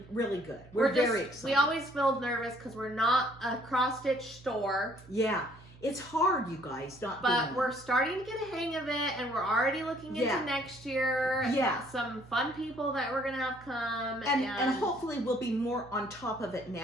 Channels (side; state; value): right; noise; hum, 22 dB below the sound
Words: really good. We're very excited. We always feel nervous because we're not a cross-stitch store. Yeah. It's hard, you guys, but we're starting to get a hang of it, and we're already looking into next year. Yeah. Some fun people that we're going to have come. And hopefully we'll be more on top of it